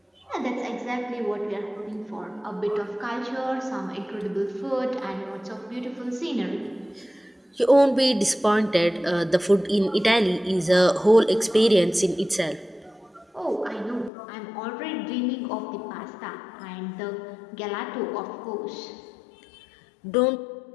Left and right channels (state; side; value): drops out; right; at 14.1 s